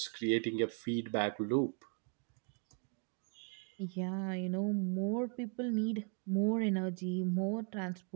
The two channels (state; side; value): quieter; left; 39.0 dB